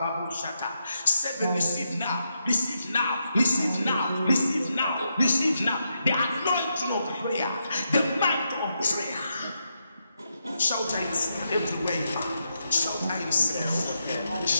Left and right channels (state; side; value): inverted; both; correlation -0.83